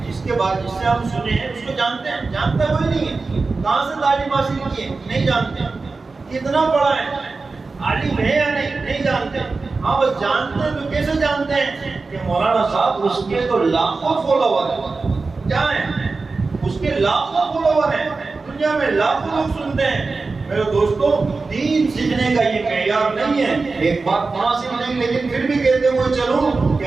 جس کے بعد جس سے ہم سنے ہیں اس کو جانتے ہیں؟ جانتا کوئی نہیں ہے. کہاں سے تعلیم حاصل کی ہے؟ نہیں جانتے. کتنا پڑھا ہے؟ عالم ہے یا نہیں جانتے. ہاں بس جانتے ہیں تو کیسے جانتے ہیں کہ مولانا صاحب اس کے تو لاکھوں فالوور ہیں. کیا ہیں؟ اس کے لاکھوں فالوور ہیں، دنیا میں لاکھوں لوگ سنتے ہیں. میرے دوستوں، دین سیکھنے کا یہ معیار نہیں ہے. ایک بات مناسب نہیں لیکن پھر بھی کہتے ہوئے چلوں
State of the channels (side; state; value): left; quieter; 4.0 dB